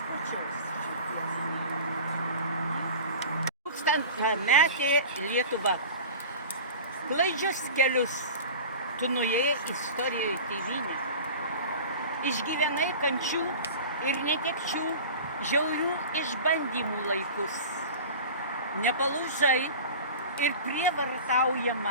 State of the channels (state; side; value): inverted; both; correlation -0.36